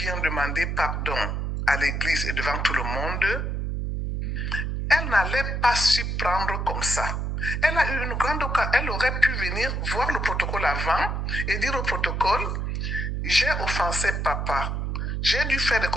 viens demander pardon à l'église et devant tout le monde, elle n'allait pas s'y prendre comme ça. Elle a eu une grande occasion. Elle aurait pu venir voir le protocole avant et dire au protocole, j'ai offensé papa. J'ai dû faire des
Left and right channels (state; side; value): noise; right; hum, 1 dB below the sound